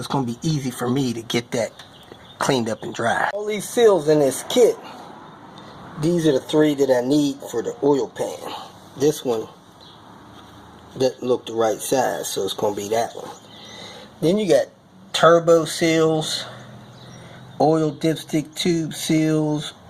going to be easy for me to get that cleaned up and dry. All these seals in this kit, these are the 3 that I need for the oil pan. This one doesn't look the right size, so it's going to be that one. Then you got turbo seals, oil dipstick tube seals,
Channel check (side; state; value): both; identical; correlation 1.00